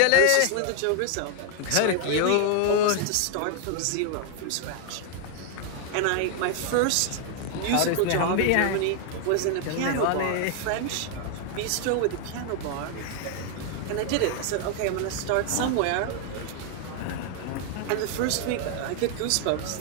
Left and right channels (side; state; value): both; different; correlation 0.00